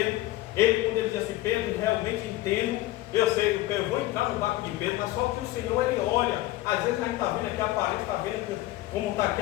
quando ele diz assim, Pedro, realmente entendo, eu sei, eu vou entrar no barco de Pedro, mas só que o Senhor, ele olha, às vezes a gente está vendo aqui a aparência, está vendo como está aqui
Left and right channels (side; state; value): right; quieter; 16.7 dB